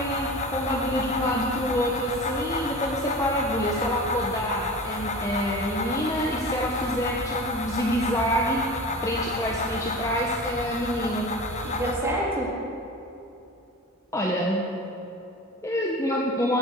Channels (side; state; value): both; normal; correlation 0.34